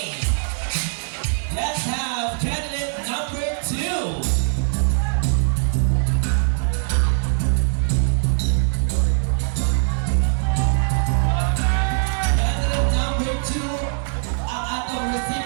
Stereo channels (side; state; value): left; silent; digital silence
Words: let's have candidate number 2. Candidate number 2, ang atong